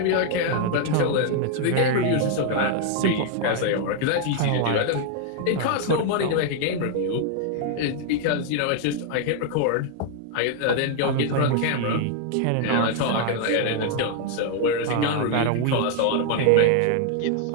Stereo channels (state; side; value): different; both; correlation 0.00